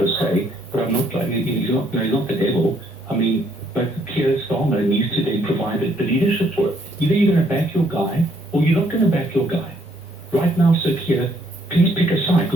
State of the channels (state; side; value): normal; both; correlation 0.68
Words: se, but I'm not like he's not the devil. I mean, but Keir Starmer needs to then provide the leadership for it. Either you're going to back your guy or you're not going to back your guy. Right now, Sir Keir, please pick a side